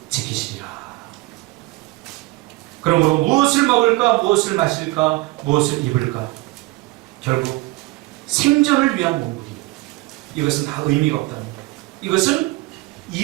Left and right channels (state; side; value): quieter; left; 21.8 dB